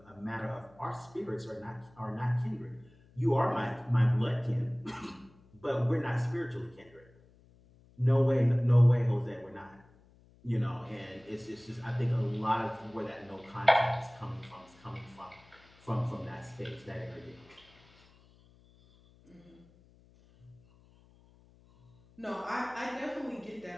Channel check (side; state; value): left; noise; hum, 28 dB below the sound